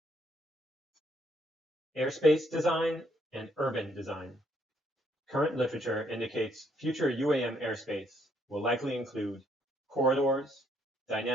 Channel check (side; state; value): both; normal; correlation 0.70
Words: Airspace design and urban design. Current literature indicates future UAM airspace will likely include corridors,